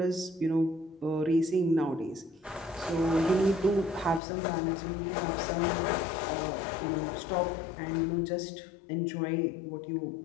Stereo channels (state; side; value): drops out; right; at 4.2 s